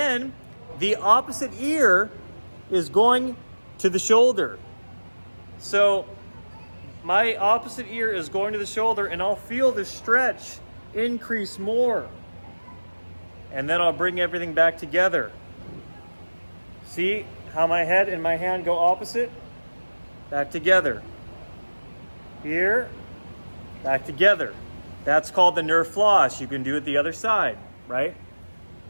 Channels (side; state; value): both; inverted; correlation -1.00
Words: the opposite ear is going to the shoulder. So my opposite ear is going to the shoulder and I'll feel the stretch increase more. And then I'll bring everything back together. See how my head and my hand go opposite? Back together. Here, back together. That's called the nerve floss. You can do it the other side, right?